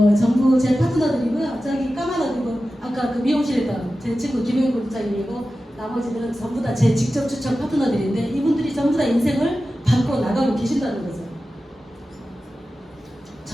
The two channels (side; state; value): both; normal; correlation 0.94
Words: 전부 제 파트너들이고요. 저기 까마귀고 아까 그 미용실에 있던 제 친구 김영인 국장님이고 나머지들은 전부 다 제 직접 추천 파트너들인데 이분들이 전부 다 인생을 바꿔 나가고 계신다는 거죠.